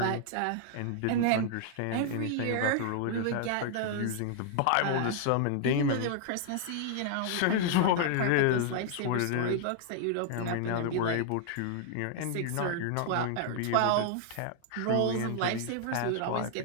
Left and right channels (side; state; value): both; different; correlation 0.00